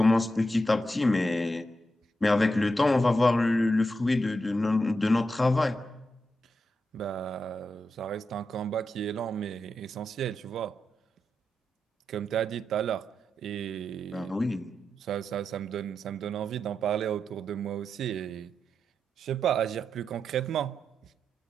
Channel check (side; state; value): both; normal; correlation 0.86